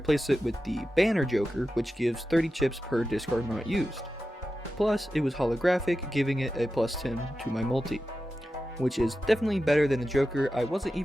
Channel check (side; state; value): both; normal; correlation 0.92